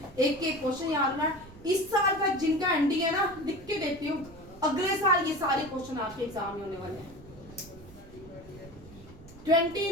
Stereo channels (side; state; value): right; noise; rumble, 20 dB below the sound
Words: एक एक क्वेश्चन याद रखना है। इस साल का जिनका एंडी है ना, लिख के देती हूँ, अगले साल ये सारे क्वेश्चन आपके एग्जाम में होने वाले हैं।